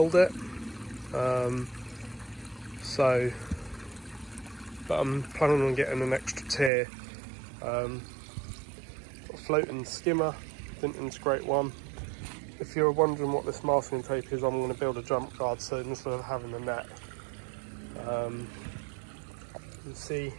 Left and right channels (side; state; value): left; drops out; at 6.7 s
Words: it. But I'm planning on getting an extra tier. Got a floating skimmer, didn't integrate one. If you're wondering what this masking tape is, I'm going to build a jump guard soon instead of having a net. You can see